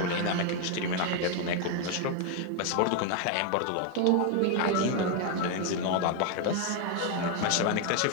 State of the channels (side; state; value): both; different; correlation 0.01